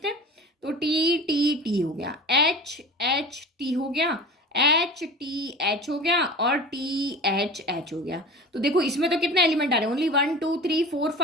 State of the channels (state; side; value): normal; both; correlation 0.35